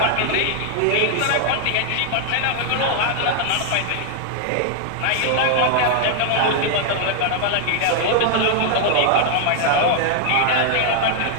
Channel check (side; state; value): both; different; correlation -0.01